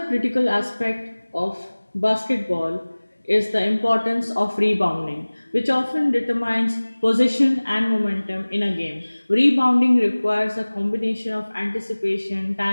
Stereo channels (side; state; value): both; inverted; correlation -1.00